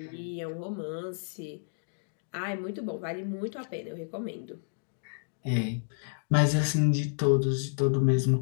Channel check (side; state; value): right; silent; digital silence